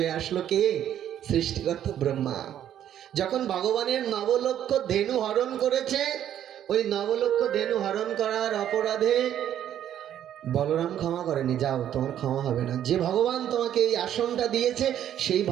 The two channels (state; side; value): quieter; left; 10.7 dB